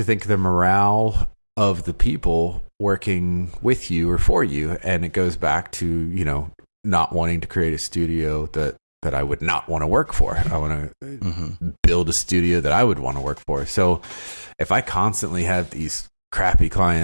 think of the morale of the people working with you or for you. And it goes back to, not wanting to create a studio that I would not want to work for. I want to build a studio that I would want to work for. So if I constantly have these crappy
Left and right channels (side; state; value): both; inverted; correlation -1.00